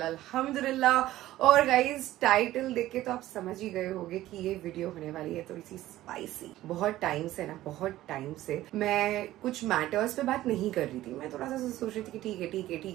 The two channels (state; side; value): quieter; left; 15.1 dB